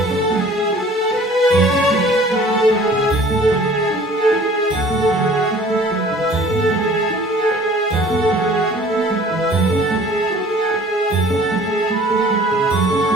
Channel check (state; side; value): normal; both; correlation 0.50